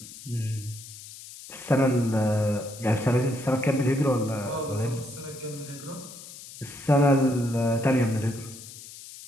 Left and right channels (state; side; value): noise; left; hiss, 15 dB below the sound